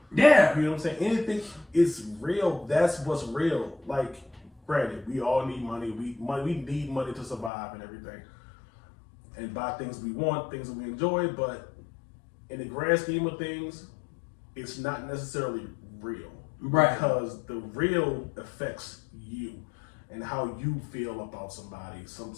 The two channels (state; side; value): drops out; right; at 7.5 s